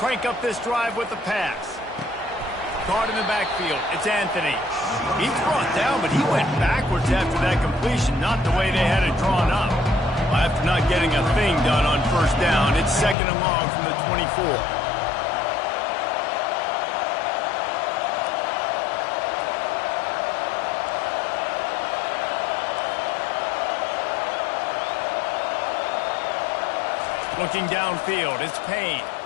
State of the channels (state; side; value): drops out; right; at 13.2 s